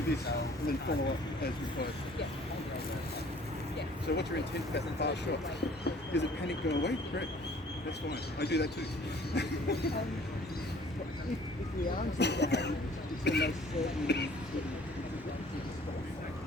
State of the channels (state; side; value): normal; both; correlation 0.54